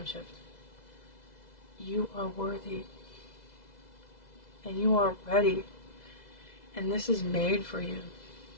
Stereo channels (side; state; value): right; late; 2.0 ms